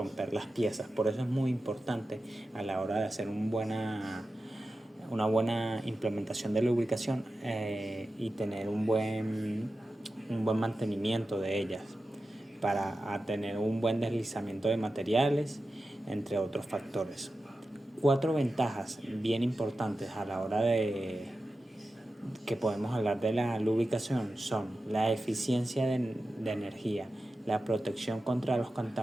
las piezas. Por eso es muy importante a la hora de hacer una buena implementación de lubricación y tener un buen mantenimiento de ellas para tener un buen deslizamiento de materiales, entre otros factores. 4 ventajas bien importantes a la hora de que podemos hablar de la lubricación son la eficiencia de energía, la protección contra los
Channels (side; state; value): both; normal; correlation 0.92